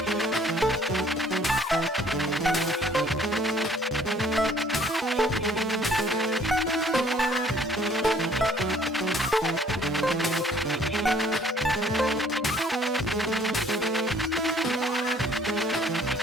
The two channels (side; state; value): both; normal; correlation 0.59